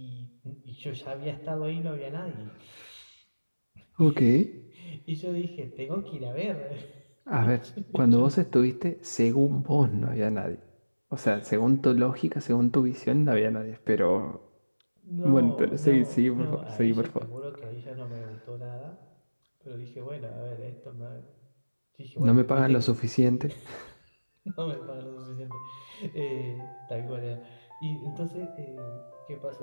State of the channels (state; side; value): inverted; both; correlation -1.00